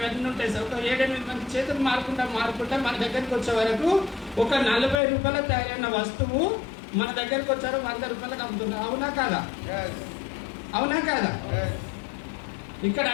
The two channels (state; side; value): drops out; right; at 5.0 s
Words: ఉంటాయి సార్. ఒక 7-8 మంది చేతులు మారుకుంటా మన దగ్గరికి వచ్చే వరకు ఒక 40 రూపాయల తయారైన వస్తువు మన దగ్గరకు వచ్చారు 100 రూపాయలకు అమ్ముతున్నారు. అవునా కాదా? అవునా కాదా? ఇక్కడ